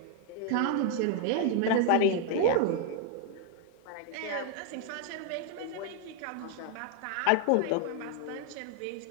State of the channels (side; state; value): both; different; correlation 0.00